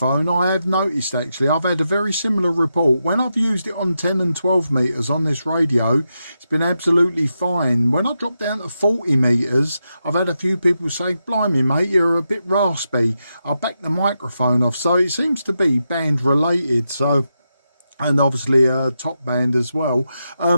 I have noticed actually, I've had a very similar report. When I've used it on 10 and 12 metres on this radio, it's been absolutely fine. When I dropped down to 40 metres, I've had a few people say, blimey mate, you're a bit raspy. I'll back the microphone off. So it seems to be band related, so... and obviously top band as well.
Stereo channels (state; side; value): inverted; both; correlation -0.87